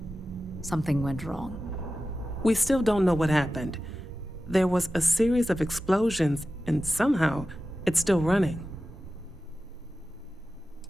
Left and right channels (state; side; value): normal; both; correlation 0.94